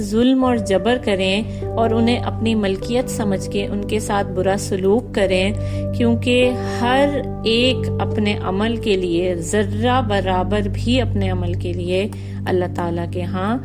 ظلم اور جبر کریں اور انہیں اپنی ملکیت سمجھ کے ان کے ساتھ برا سلوک کریں، کیونکہ ہر ایک اپنے عمل کے لیے، ذرہ برابر بھی اپنے عمل کے لیے اللہ تعالیٰ کے ہاں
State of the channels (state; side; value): identical; both; correlation 1.00